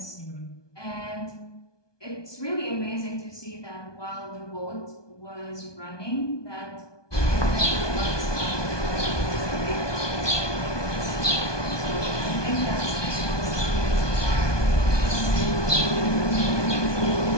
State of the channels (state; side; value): late; right; 1.2 ms